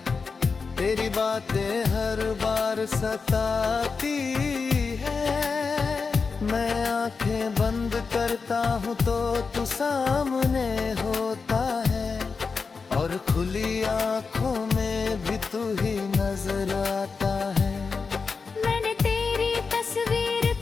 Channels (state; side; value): quieter; right; 4.8 dB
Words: तेरी बातें हर बार सताती है। मैं आंखें बंद करता हूँ तो तू सामने होता है और खुली आंखों में भी तू ही नजर आता है। मैंने तेरी तस्वीर